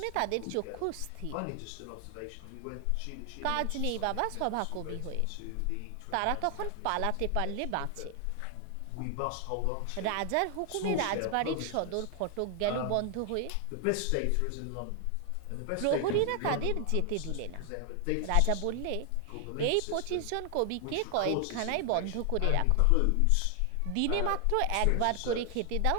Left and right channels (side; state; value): both; different; correlation 0.00